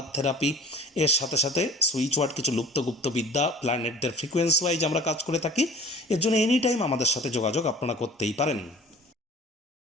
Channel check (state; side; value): normal; both; correlation 0.46